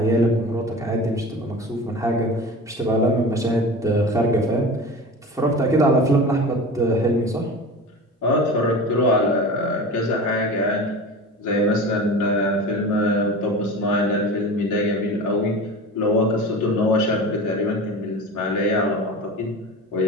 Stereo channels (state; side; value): normal; both; correlation 0.33